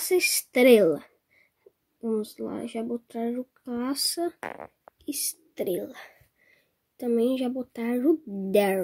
Estrela. Vamos lá, já botar o Caça Estrela. Também já botar o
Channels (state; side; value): identical; both; correlation 1.00